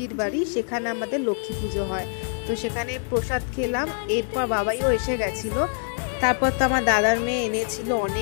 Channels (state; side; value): silent; right; 60 dB below the other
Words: বাড়ি, সেখানে আমাদের লক্ষ্মী পুজো হয়, তো সেখানে প্রসাদ খেলাম। এরপর বাবাইও এসে গেছিলো। তারপর তো আমার দাদার মেয়ে এনেছিল